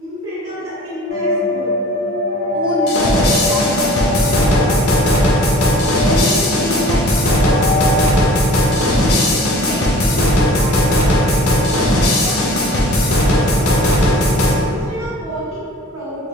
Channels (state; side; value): normal; both; correlation 0.47